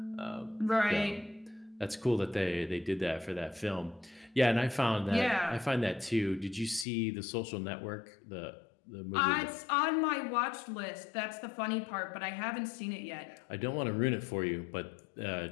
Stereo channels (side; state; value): right; drops out; at 6.9 s